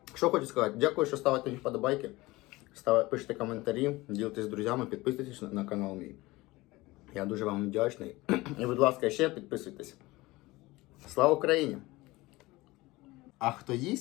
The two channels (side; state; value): right; quieter; 20.4 dB